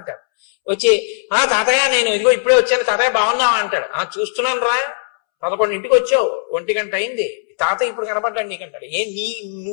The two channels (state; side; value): silent; right; 67 dB below the other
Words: వచ్చి తాతయ్య నేను ఇదిగో ఇప్పుడే వచ్చాను, తాతయ్య బాగున్నావా అంటాడు. చూస్తున్నాను రా 11ంటికి వచ్చావు, 1 గంట అయింది, తాత ఇప్పుడు కనపడ్డాడు నీకంటాడు.